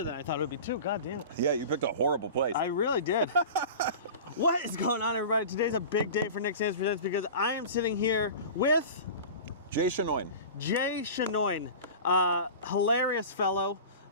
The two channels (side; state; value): both; inverted; correlation -0.35